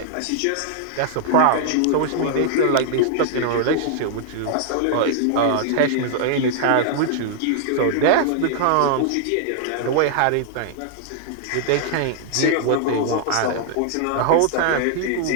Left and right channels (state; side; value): different; both; correlation -0.01